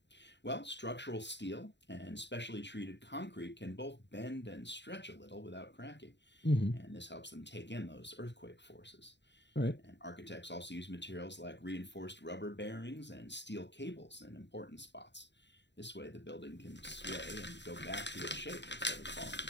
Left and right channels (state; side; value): late; right; 0.51 ms